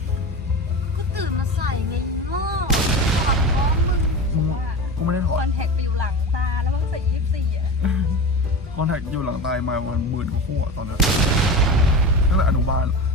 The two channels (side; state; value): both; normal; correlation 0.28